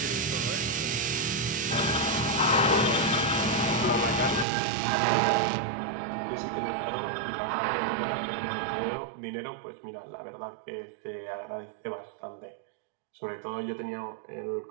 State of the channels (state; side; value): drops out; left; at 4.5 s